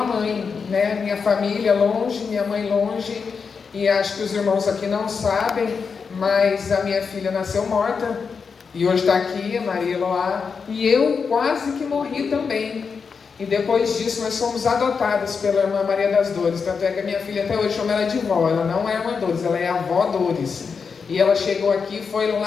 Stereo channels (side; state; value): right; quieter; 5.6 dB